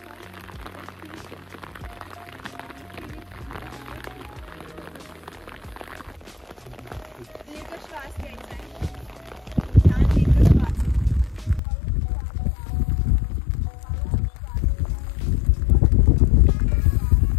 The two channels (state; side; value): drops out; right; at 11.6 s